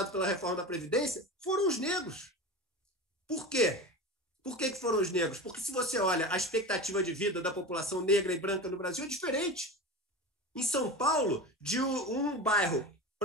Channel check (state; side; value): normal; both; correlation 0.28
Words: pela reforma da Previdência foram os negros. Por quê? Por que foram os negros? Porque se você olha a expectativa de vida da população negra e branca no Brasil é diferente. Em São Paulo, de um bairro